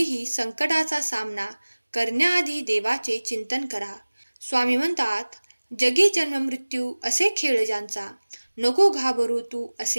संकटाचा सामना करण्याआधी देवाचे चिंतन करा. स्वामी म्हणतात, जगी जन्म मृत्यू असे खेळ ज्यांचा, नको घाबरू तू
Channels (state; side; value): inverted; both; correlation -1.00